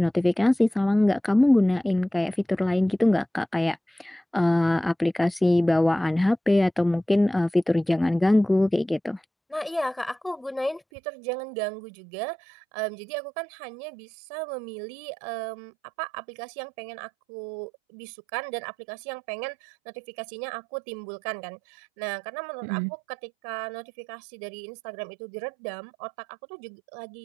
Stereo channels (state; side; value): drops out; left; at 10.8 s